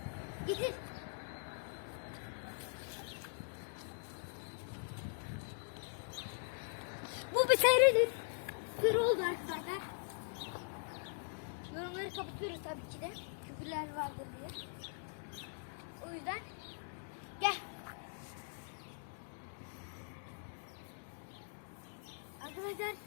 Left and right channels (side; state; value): right; silent; digital silence